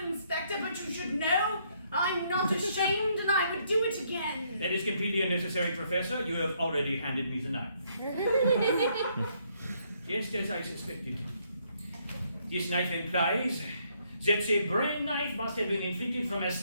Inspector, but you should know I'm not ashamed and I would do it again. That is completely unnecessary, Professor. You have already handed me the knife. Just as I suspected. This knife implies that the brain knife must have been inflicted from a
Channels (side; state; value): both; inverted; correlation -0.71